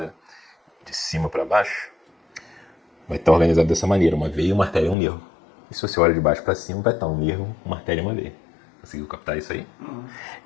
de cima para baixo, vai estar organizado dessa maneira, uma veia, uma artéria e um nervo. E se você olha de baixo para cima, vai estar um nervo, uma artéria e uma veia. Conseguiu captar isso aí? Uhum.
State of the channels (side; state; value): right; drops out; at 5.0 s